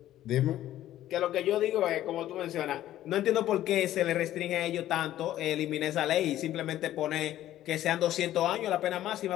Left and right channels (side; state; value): right; quieter; 13.2 dB